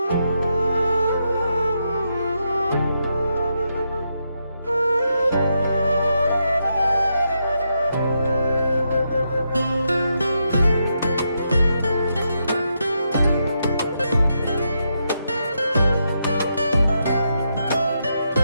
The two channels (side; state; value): both; inverted; correlation -0.82